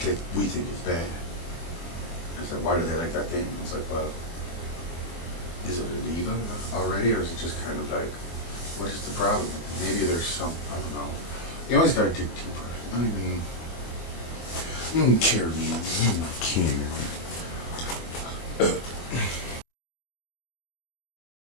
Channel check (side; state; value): right; late; 24 ms